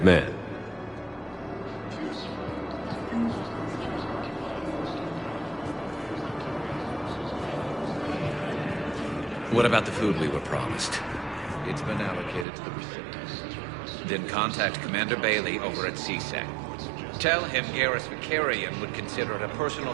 man. What about the food we were promised? It's been allocated to the recipients. Then contact Commander Bailey over at CSEC. Tell him Garrus Vakarian would consider it a personal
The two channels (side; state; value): left; drops out; at 12.5 s